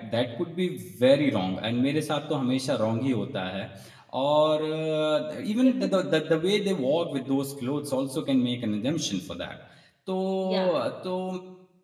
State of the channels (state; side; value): identical; both; correlation 1.00